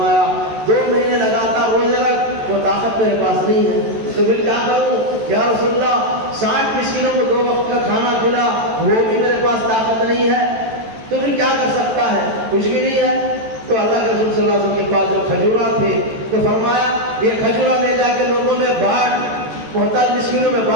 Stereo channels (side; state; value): left; late; 14 ms